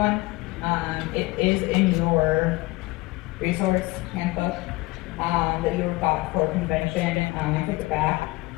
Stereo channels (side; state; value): right; quieter; 21.9 dB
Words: It is in your resource handbook that you got for convention. It's at the back.